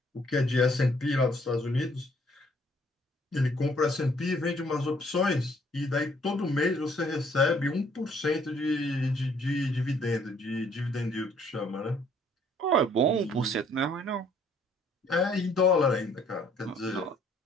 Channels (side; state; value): both; normal; correlation 0.63